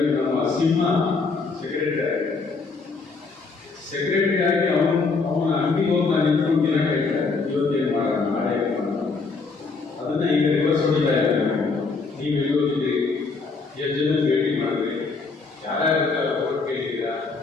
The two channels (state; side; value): quieter; right; 4.3 dB